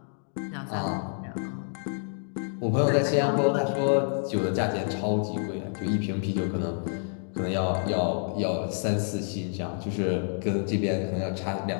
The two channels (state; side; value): silent; right; 57 dB below the other